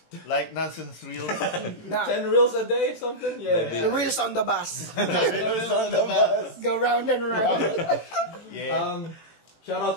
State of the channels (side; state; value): right; late; 18 ms